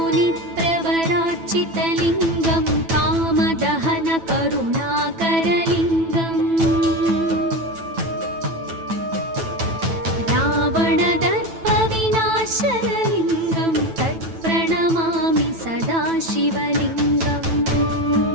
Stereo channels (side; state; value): left; late; 9.1 ms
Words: कामदहनकरुणाकरलिङ्गम् रावणदर्पविनाशनलिङ्गं तत्प्रणमामि सदा शिवलिङ्गम्